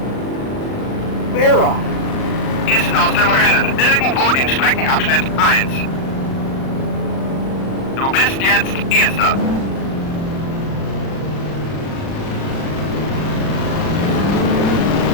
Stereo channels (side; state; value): right; late; 39 ms